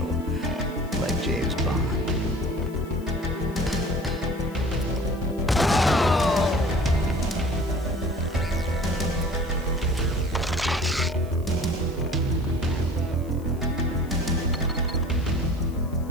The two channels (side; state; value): left; noise; hiss, 25 dB below the sound